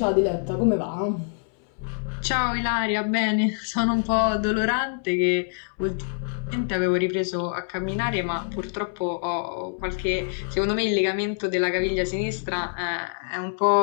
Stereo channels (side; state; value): right; silent; 61 dB below the other